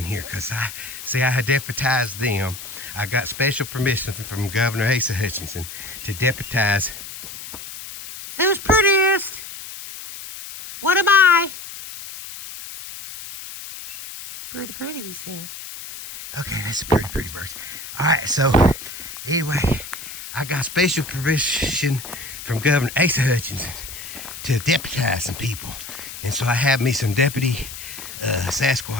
here, because I had deputized them. I got special permission from Governor Asa Hutchinson to deputize. Who's prettiest? What am I? Pretty, pretty, he said. Okay, that's a pretty, pretty bird. All right, so anyway, I got special permission from Governor Asa Hutchinson to deputize some people. And so I have me some deputy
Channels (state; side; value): noise; left; hiss, 11 dB below the sound